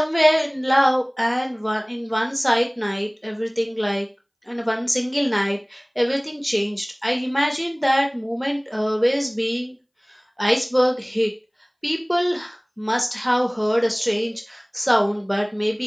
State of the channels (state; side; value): identical; both; correlation 1.00